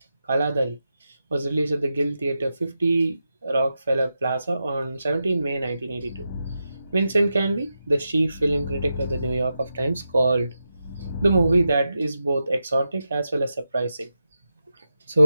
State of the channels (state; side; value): inverted; both; correlation -0.89